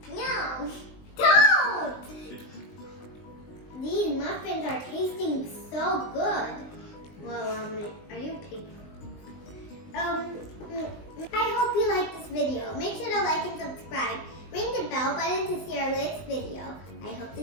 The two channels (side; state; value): right; late; 20 ms